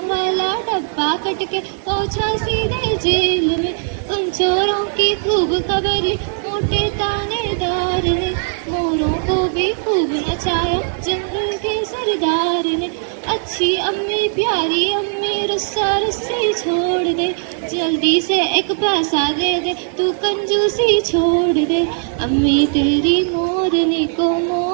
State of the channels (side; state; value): left; silent; 67 dB below the other